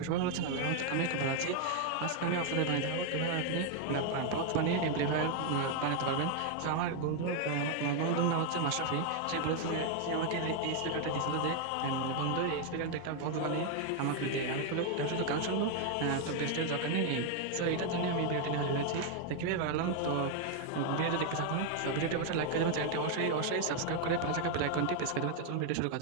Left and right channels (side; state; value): both; different; correlation 0.00